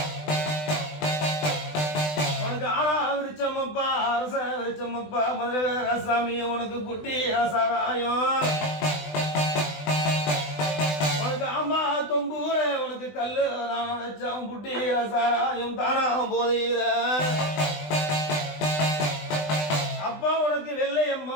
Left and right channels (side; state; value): right; late; 20 ms